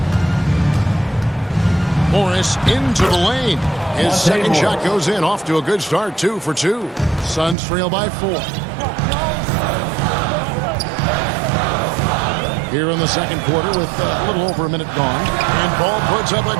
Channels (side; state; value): left; drops out; at 7.6 s